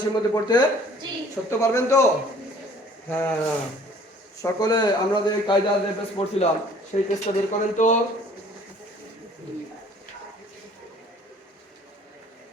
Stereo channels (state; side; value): normal; both; correlation 0.54